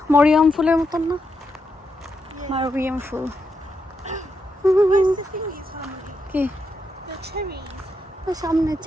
মরিয়ম ফুলের মতন না? মরিয়ম ফুল কি সামনে?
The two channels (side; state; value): both; normal; correlation 0.82